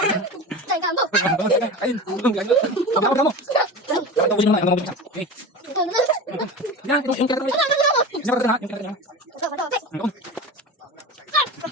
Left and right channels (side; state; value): both; normal; correlation 0.29